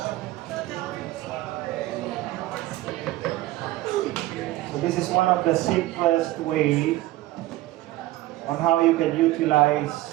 this is one of the simplest way on how you can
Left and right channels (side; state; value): left; quieter; 16.9 dB